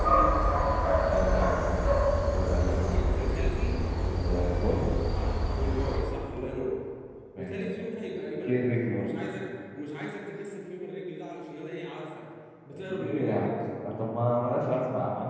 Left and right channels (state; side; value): identical; both; correlation 1.00